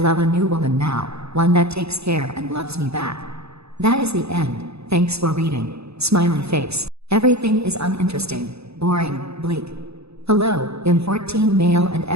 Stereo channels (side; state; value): left; late; 0.79 ms